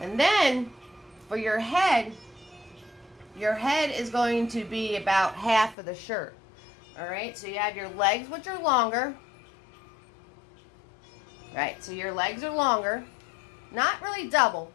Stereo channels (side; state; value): right; drops out; at 5.8 s